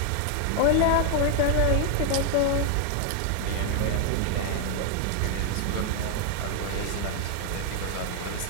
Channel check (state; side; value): different; both; correlation 0.00